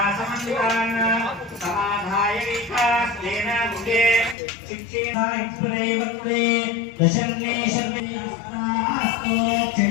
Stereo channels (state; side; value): drops out; right; at 4.4 s